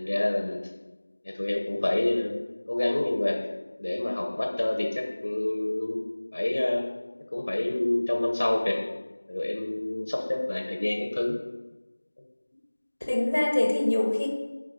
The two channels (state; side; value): inverted; both; correlation -1.00